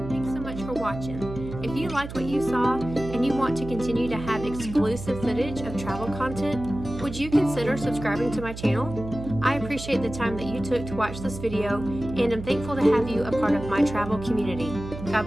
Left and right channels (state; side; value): noise; right; hum, 10 dB below the sound